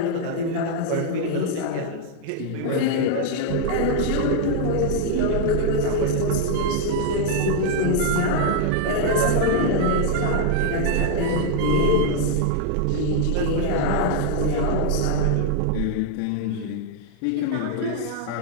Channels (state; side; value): different; both; correlation 0.00